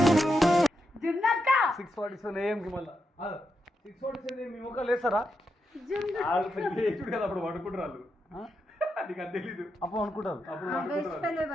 జున్నక్క 6:47 AM కి మళ్ళీ 6:47 మీ ముఖాలు వేస్తారా చూడు కదా అప్పుడు పడుకుంటారు నీకు అది తెలీదు అప్పుడు అనుకుంటారు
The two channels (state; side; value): normal; both; correlation 0.85